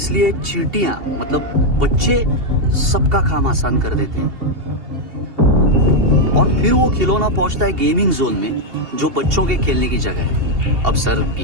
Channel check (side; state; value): left; late; 2.8 ms